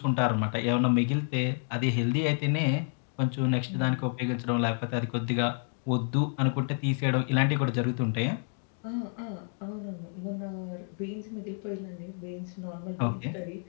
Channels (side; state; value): right; silent; 58 dB below the other